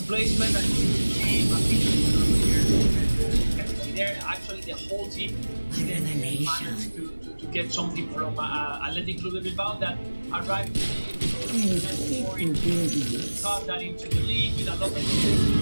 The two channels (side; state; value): both; inverted; correlation -1.00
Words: that there actually the whole team didn't manage to get something from Athletic Club de Bilbao that arrived cut that into the league with a lot of